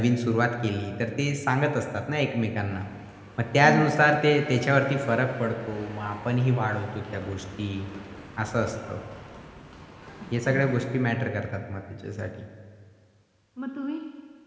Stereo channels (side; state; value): both; identical; correlation 1.00